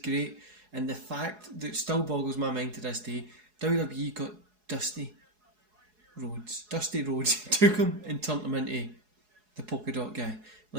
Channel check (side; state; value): left; late; 4.7 ms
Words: and the fact that it still boggles my mind to this day, WWE got Dusty Rhodes took him and turned him into the polka dot guy.